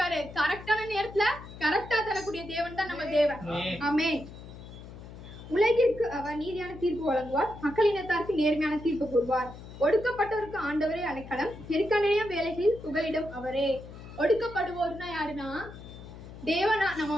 கரெக்டான நேரத்துல கரெக்டா தரக்கூடிய தேவன் தான் நம்ம தேவன். ஆமென். உலகிற்கு அவர் நீதியான தீர்ப்பு வழங்குவார், மக்களினத்தாருக்கு நேர்மையான தீர்ப்பு கூறுவார். ஒடுக்கப்பட்டவருக்கு ஆண்டவரே அடைக்கலம், நெருக்கடிய வேலைகளில் புகலிடம் அவரே. ஒடுக்கப்படுவோர்னா யாருன்னா தேவனா. நம்ம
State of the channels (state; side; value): noise; left; hum, 15 dB below the sound